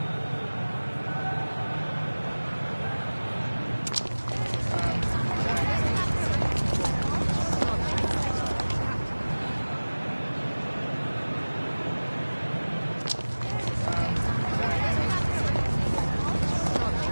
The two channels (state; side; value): inverted; both; correlation -1.00